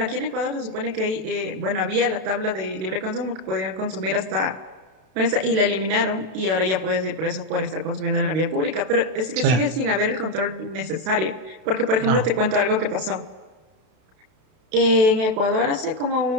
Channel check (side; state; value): left; late; 32 ms